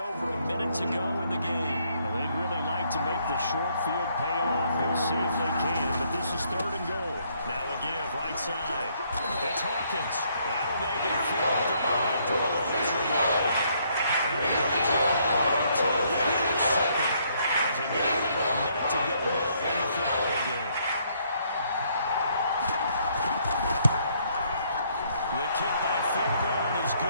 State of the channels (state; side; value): inverted; both; correlation -0.69